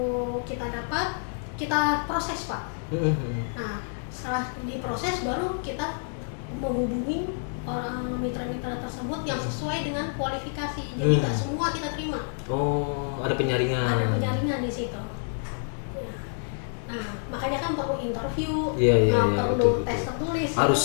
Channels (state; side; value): silent; right; digital silence